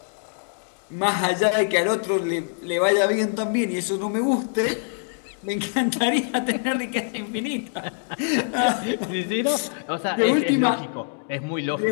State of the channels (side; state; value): right; silent; digital silence